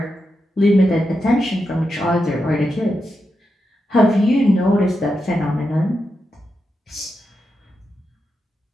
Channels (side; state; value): both; normal; correlation 0.87